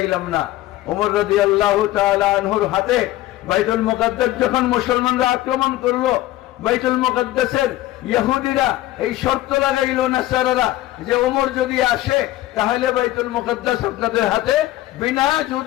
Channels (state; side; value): quieter; right; 15.7 dB